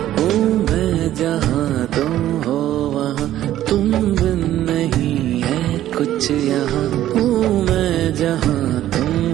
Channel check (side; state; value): left; quieter; 13.0 dB